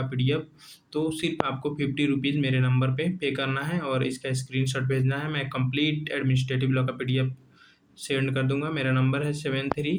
पीडीएफ, तो सिर्फ आपको 50 रुपीज़ मेरे नंबर पे करना है और इसका स्क्रीनशॉट भेजना है। मैं कंप्लीट एडमिनिस्ट्रेटिव लॉ का पीडीएफ सेंड कर दूंगा। मेरा नंबर है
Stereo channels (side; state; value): both; identical; correlation 1.00